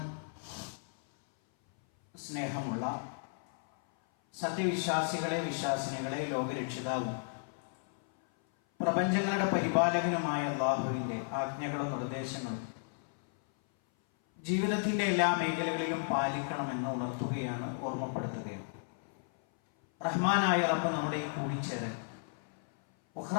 സ്നേഹമുള്ള സത്യവിശ്വാസികളെ വിശ്വാസിനികളെ ലോകരക്ഷിതാവും പ്രപഞ്ചങ്ങളുടെ പരിപാലകനുമായ അല്ലാഹുവിന്റെ ആജ്ഞകളും നിർദ്ദേശങ്ങളും ജീവിതത്തിന്റെ എല്ലാ മേഖലകളിലും പാലിക്കണമെന്ന് ഉണർത്തുകയാണ്, ഓർമ്മപ്പെടുത്തുകയാണ്. റഹ്മാനായ റബ്ബ് നമ്മുടെ ഈ കൂടിച്ചേരൽ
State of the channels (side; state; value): right; silent; 55 dB below the other